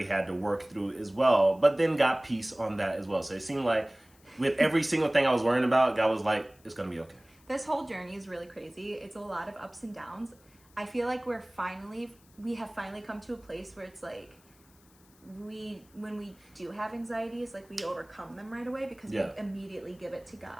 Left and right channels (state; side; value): noise; left; hiss, 29 dB below the sound